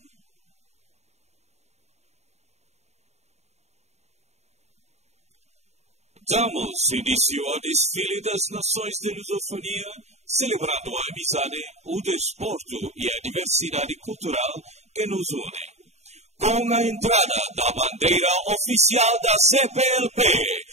Damos início ao desfile das nações de lusofonia, celebrando a amizade, o desporto e a diversidade cultural que nos unem. Com a entrada da bandeira oficial da CPLP,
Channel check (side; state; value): left; late; 0.32 ms